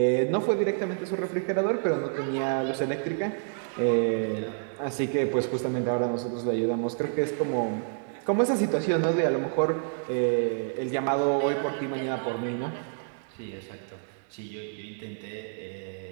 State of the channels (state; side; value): silent; left; digital silence